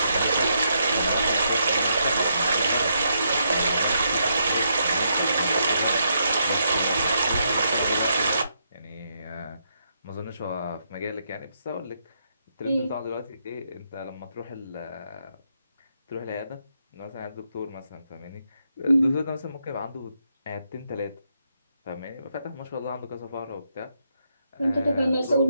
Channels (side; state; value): both; inverted; correlation -0.78